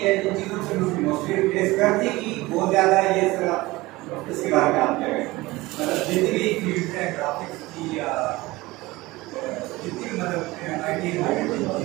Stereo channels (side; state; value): left; quieter; 20.3 dB